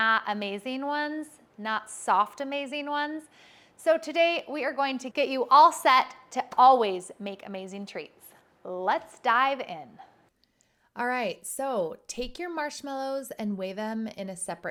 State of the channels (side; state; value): both; identical; correlation 1.00